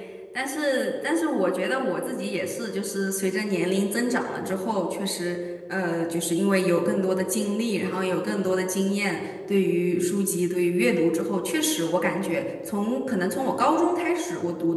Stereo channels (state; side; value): identical; both; correlation 1.00